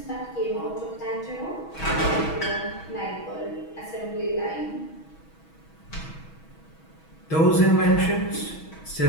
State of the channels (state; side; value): late; right; 6.2 ms